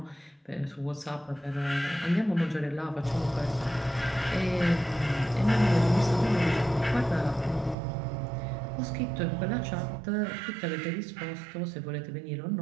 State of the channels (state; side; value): drops out; left; at 7.8 s